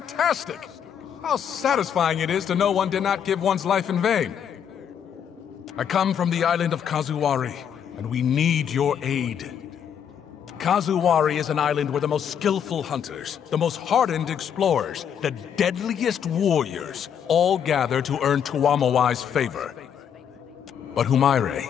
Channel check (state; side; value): quieter; right; 8.4 dB